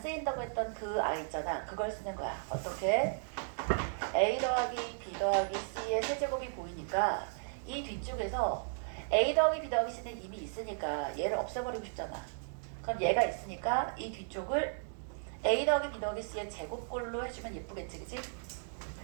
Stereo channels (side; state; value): left; silent; digital silence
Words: 쓰인다고 했던 그 아이 있잖아. 그걸 쓰는 거야. 어떻게? a 더하기 b 더하기 c의 세제곱이 보이니까 이 뒤쪽에서 a 더하기 b 더하기 c는 이미 있으니까 얘를 없애버리고 싶잖아. 그럼 얘가 있으니까 이 뒤쪽을 a 더하기 b 더하기 c의 제곱꼴로 해주면 예쁘겠지, 그치?